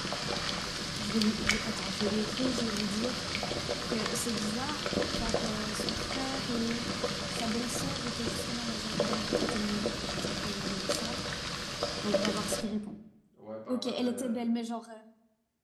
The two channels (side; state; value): both; identical; correlation 1.00